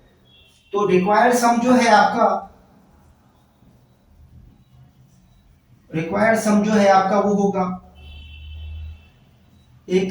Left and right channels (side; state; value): both; identical; correlation 1.00